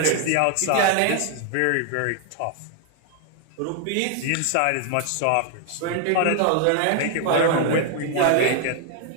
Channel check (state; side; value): different; both; correlation 0.00